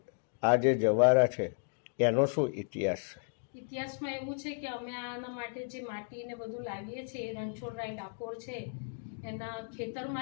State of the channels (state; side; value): silent; right; digital silence